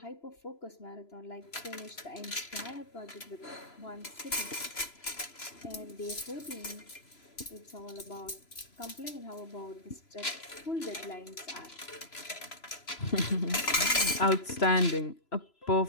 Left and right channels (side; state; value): right; late; 3.0 ms